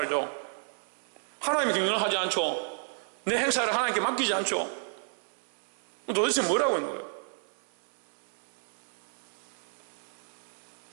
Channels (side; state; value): left; silent; 57 dB below the other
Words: 하나님의 경영을 하지 않죠. 내 행사를 하나님께 맡기지 않죠. 도대체 뭐라고 있는 거예요?